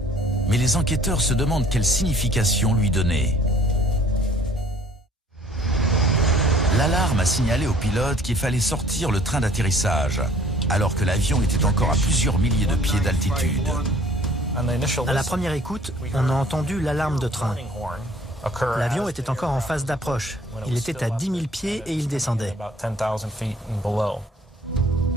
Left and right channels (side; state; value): both; normal; correlation 0.54